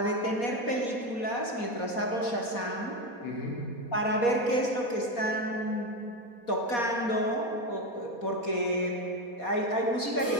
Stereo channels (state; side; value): late; right; 4.2 ms